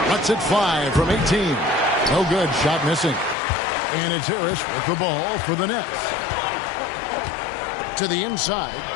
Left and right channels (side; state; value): right; drops out; at 3.4 s